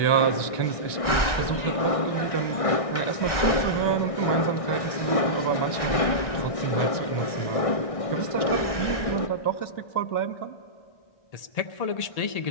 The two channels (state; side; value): late; right; 1.3 ms